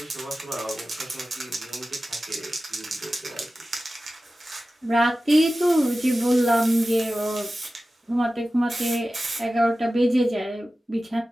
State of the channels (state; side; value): normal; both; correlation 0.95